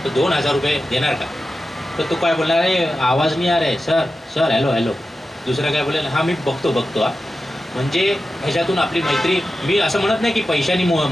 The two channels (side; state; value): both; normal; correlation 0.92